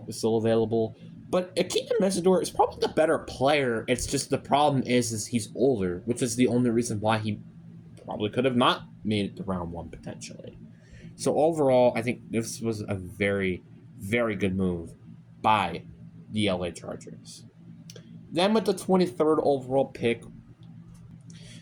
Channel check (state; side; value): identical; both; correlation 1.00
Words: is still available, but Akeem Mesidor is probably the better player. It's just the problem is he's older, which is the only reason why he probably could have not made it to round 1 potentially. So overall, I think this was a very, very good move by the LA Chargers. Then with the 23rd overall pick,